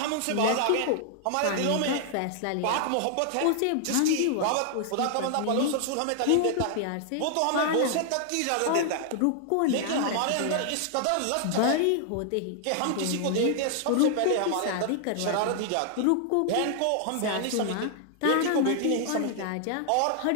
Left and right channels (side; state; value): both; different; correlation 0.00